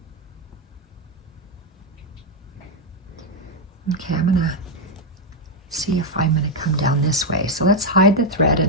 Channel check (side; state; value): both; normal; correlation 0.02